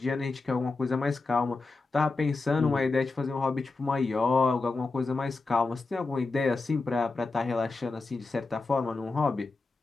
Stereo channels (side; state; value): right; quieter; 3.7 dB